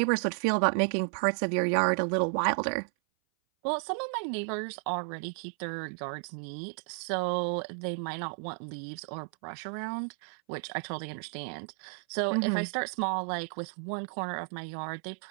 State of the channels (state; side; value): silent; left; 56 dB below the other